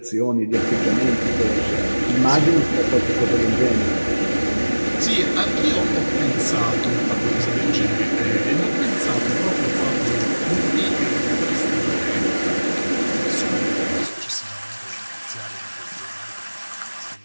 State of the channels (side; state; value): both; inverted; correlation -1.00